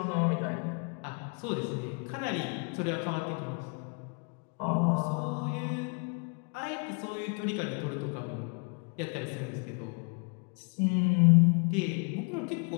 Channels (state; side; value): quieter; right; 35.9 dB